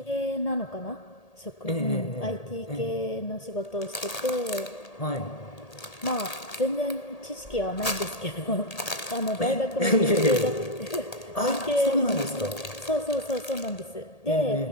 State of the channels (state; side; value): late; right; 1.8 ms